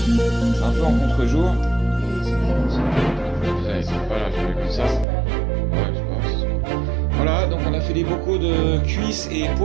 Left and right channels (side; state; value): left; drops out; at 5.1 s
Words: C'est un peu en contre-jour. Voilà, je mets comme ça. Ouais, je sais pas. Voilà, donc on a fait les bocaux de cuisses et